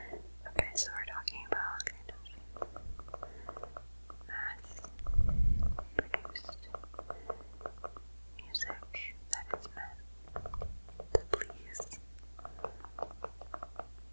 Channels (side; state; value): both; inverted; correlation -1.00